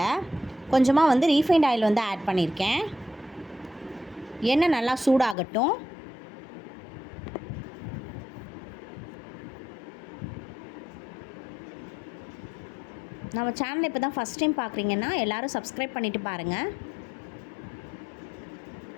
கொஞ்சமா ரீஃபைண்ட் ஆயில் ஆட் பண்ணியிருக்கேன். எண்ணெய் நல்லா சூடாகட்டும். நம்ம சேனலை இப்போ தான் ஃபஸ்ட் டைம் பார்க்குறீங்கன்னா எல்லோரும் சப்ஸ்கிரைப் பண்ணிவிட்டு பாருங்கள்.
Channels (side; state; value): right; drops out; at 5.4 s